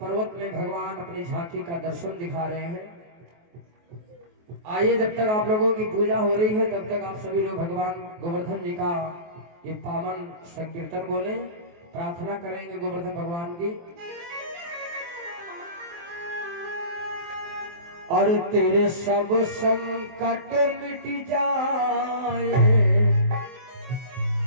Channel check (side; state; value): left; late; 23 ms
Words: में भगवान अपनी झांकी का दर्शन दिखा रहे हैं। आइए जब तक आप लोगों की पूजा हो रही है तब तक आप सभी लोग भगवान गोवर्धन जी का ये पावन संकीर्तन बोले, प्रार्थना करेंगे गोवर्धन भगवान की। और तेरे सब संकट मिट जाए,